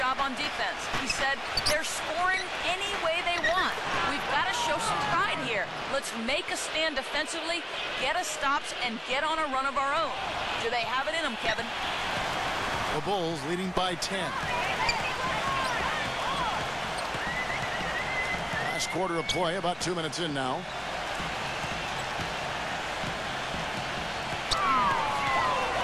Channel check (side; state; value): both; identical; correlation 1.00